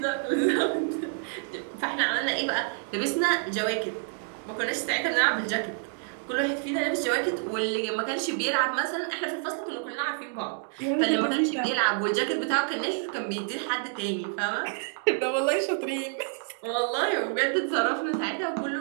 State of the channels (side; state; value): left; silent; 59 dB below the other